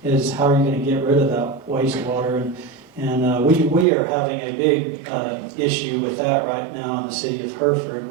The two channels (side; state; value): left; drops out; at 3.9 s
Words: Is how are you going to get rid of that wastewater? And we are having a big issue with that right now in the city of Hereford.